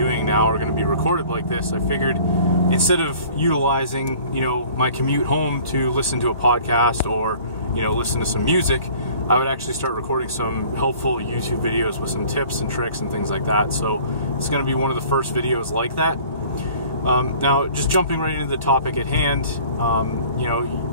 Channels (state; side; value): inverted; both; correlation -0.50